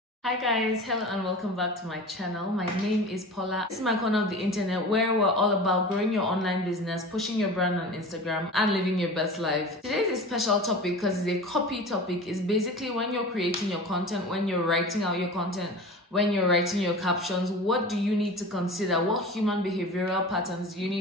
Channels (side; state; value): both; normal; correlation 0.35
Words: Hi guys, hello and welcome back to my channel. My name is Paula. This is my corner of the internet where we're all about growing your online business, pushing your brand on Instagram, and living your best life. Today's a special topic because it's a copy topic. It's basically when you're creating your content, when you're writing out your content, when you're writing your captions, what do you need to consider? What human behavioral patterns do you